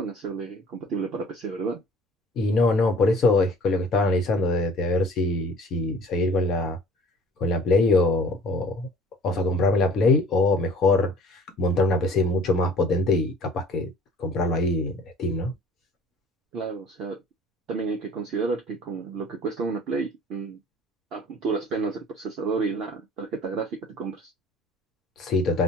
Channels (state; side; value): normal; both; correlation 0.49